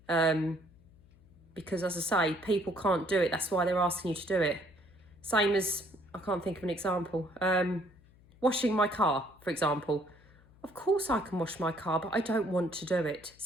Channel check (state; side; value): noise; left; hum, 27 dB below the sound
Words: Because as I say, people can't do it. That's why they're asking you to do it. Same as, I can't think of an example. Washing my car, for example. Of course I can wash my car, but I don't want to do it.